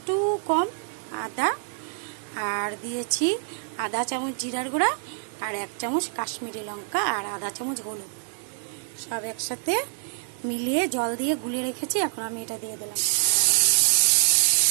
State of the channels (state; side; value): silent; left; digital silence